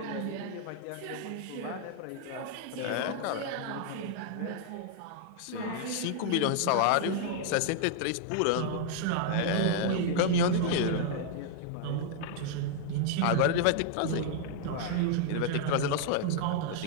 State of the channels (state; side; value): different; both; correlation 0.00